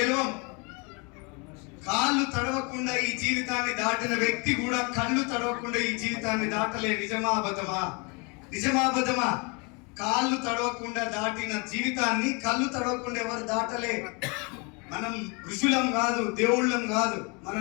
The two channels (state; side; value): quieter; right; 31.5 dB